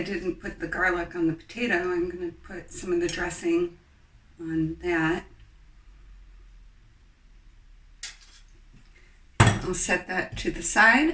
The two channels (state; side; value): identical; both; correlation 1.00